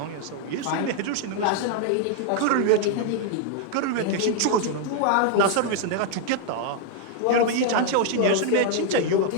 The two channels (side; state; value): both; different; correlation 0.00